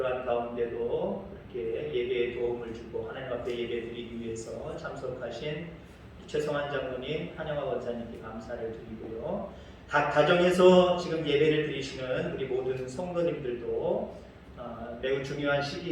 가운데도 이렇게 예배에 도움을 주고 하나님 앞에 예배 드리기 위해서 참석하신 최성환 장로님, 한영화 원사님께 감사를 드리고요. 각 가정에서 지금 예배를 드리시는 우리 모든 성도님들도 매우 중요한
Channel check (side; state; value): both; identical; correlation 1.00